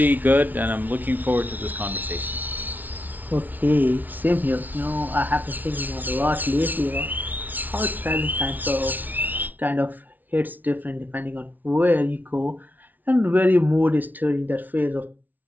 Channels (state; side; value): late; left; 0.081 ms